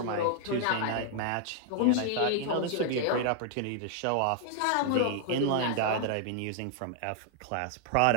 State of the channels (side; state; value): both; different; correlation 0.00